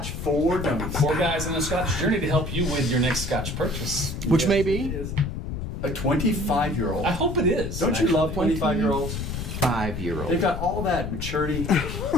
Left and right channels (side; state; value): left; noise; rumble, 5 dB below the sound